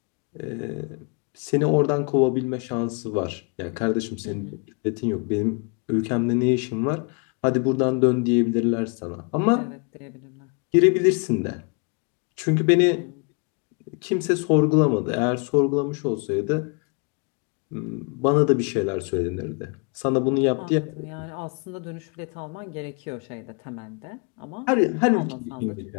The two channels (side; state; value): right; quieter; 35.3 dB